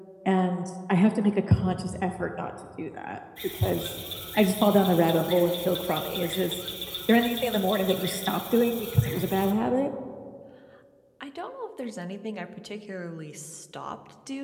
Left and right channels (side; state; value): both; identical; correlation 1.00